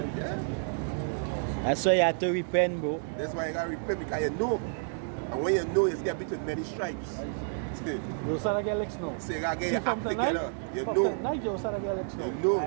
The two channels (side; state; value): left; silent; digital silence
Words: That's why you have to repent, bro. That's why you got to repent because you know. And when you know, it's going to be with many stripes. You start to get licks now. So you got to get See, your from act tonight, together. You from know. tonight you start to get licks now. You know.